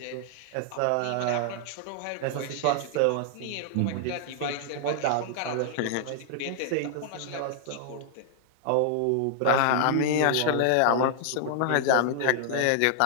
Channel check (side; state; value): both; different; correlation -0.01